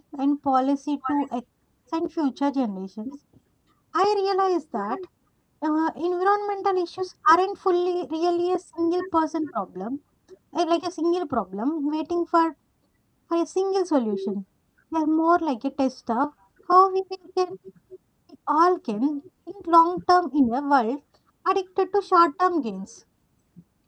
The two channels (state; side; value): identical; both; correlation 1.00